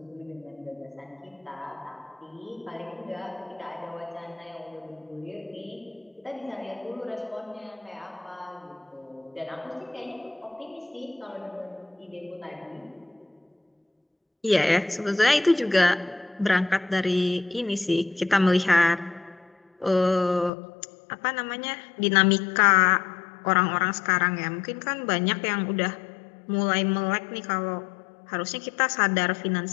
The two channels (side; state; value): right; drops out; at 20.5 s